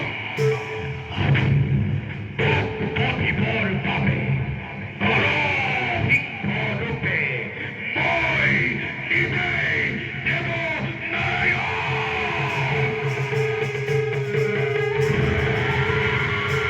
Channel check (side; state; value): both; identical; correlation 1.00